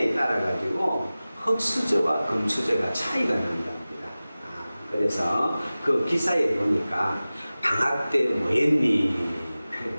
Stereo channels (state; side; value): inverted; both; correlation -0.97